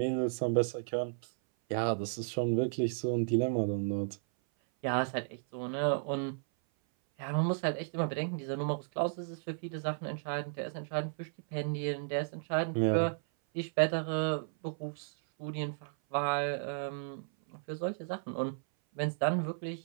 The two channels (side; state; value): left; silent; 55 dB below the other